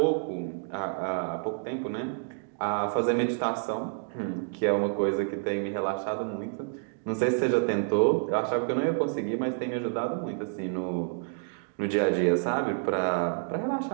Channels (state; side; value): silent; left; digital silence